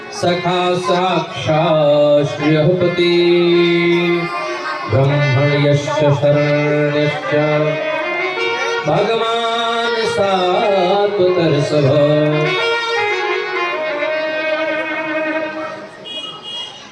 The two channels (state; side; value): identical; both; correlation 1.00